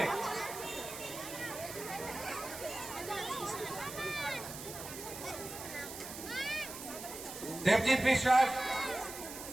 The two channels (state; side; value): noise; right; hiss, 10 dB below the sound